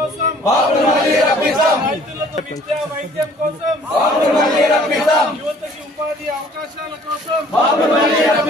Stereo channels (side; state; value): both; normal; correlation 0.55